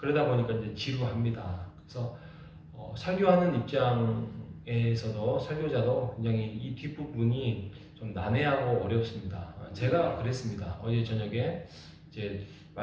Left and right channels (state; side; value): identical; both; correlation 1.00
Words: 보니까 이제 지루합니다. 그래서 설교하는 입장에서도 설교자도 굉장히 이 뒷부분이 좀 난해하고 어렵습니다. 제가 그랬습니다. 어제 저녁에 이제